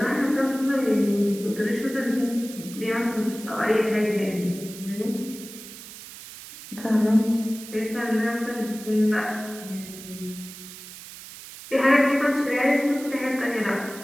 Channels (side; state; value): right; noise; hiss, 15 dB below the sound